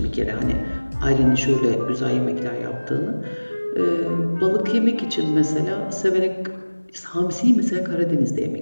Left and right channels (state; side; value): inverted; both; correlation -1.00